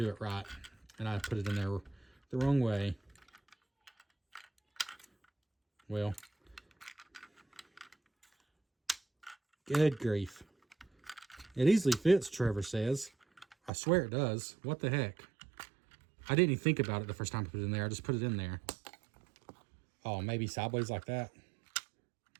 it right. And I put it in there the wrong way. Well, good grief. It easily fits, Trevor says. I swear it does. What the heck? I didn't even think about it the first time I put it in there. I just put it in there. Oh, maybe sideways like that.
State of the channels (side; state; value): left; drops out; at 13.7 s